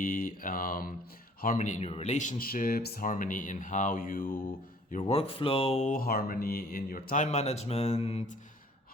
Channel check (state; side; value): normal; both; correlation 0.55